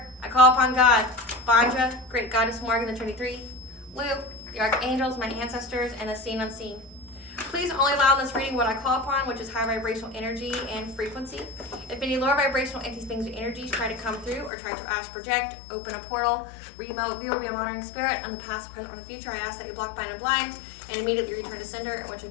I call upon God, Banja, Great Goddess Morgan, the Trinity 3, Luke, the Archangels, my ancestors, and the seen unseen. Please only allow in this reading what I call upon, which is high vibrational energy and frequency. If any lower vibrational entities, beings, or energies try to come through or try to astral project, open a portal, remote, view, or be a monitoring spirit on the past, present, or the future, I ask that you block, bind, and blind, and immediately return to sender, and which will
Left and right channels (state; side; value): drops out; right; at 14.5 s